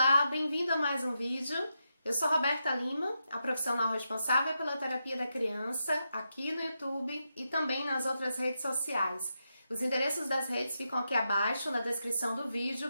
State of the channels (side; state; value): both; inverted; correlation -0.86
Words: bem-vindo a mais um vídeo. Eu sou Roberta Lima, a profissional responsável pela terapia da criança aqui no YouTube e também nas outras redes sociais. Os endereços das redes ficam aqui abaixo na descrição do